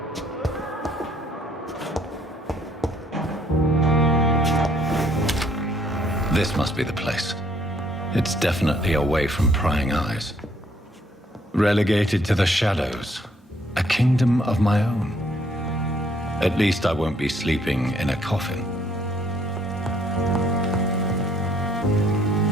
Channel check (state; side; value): normal; both; correlation 0.66